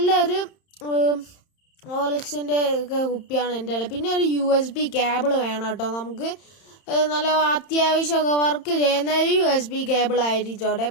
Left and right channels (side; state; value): right; late; 31 ms